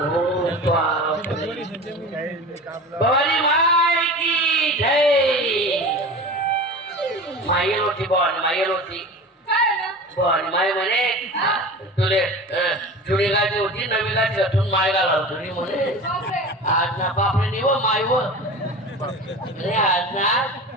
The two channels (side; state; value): both; normal; correlation 0.34